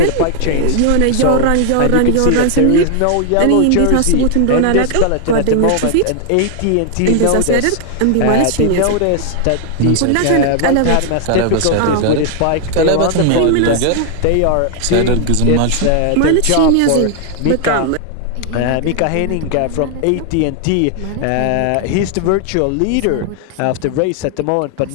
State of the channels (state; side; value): different; both; correlation 0.00